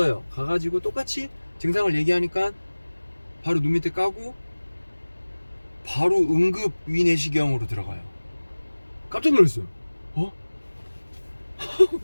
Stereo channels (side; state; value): both; inverted; correlation -1.00